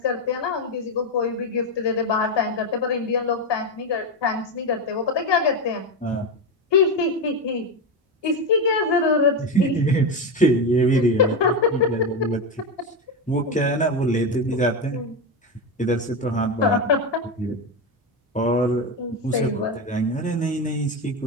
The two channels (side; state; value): both; normal; correlation 0.13